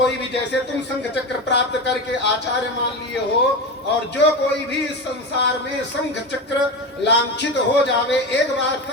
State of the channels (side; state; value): both; normal; correlation 0.22